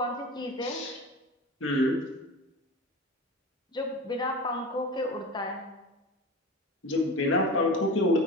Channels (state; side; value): normal; both; correlation 0.31